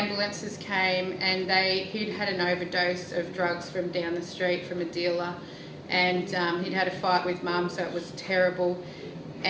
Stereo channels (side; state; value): both; identical; correlation 1.00